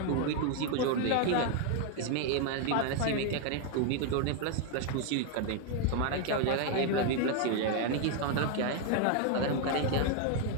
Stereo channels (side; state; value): both; different; correlation 0.00